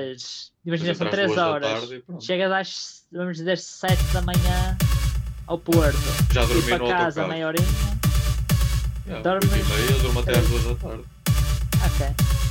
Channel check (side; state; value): both; identical; correlation 1.00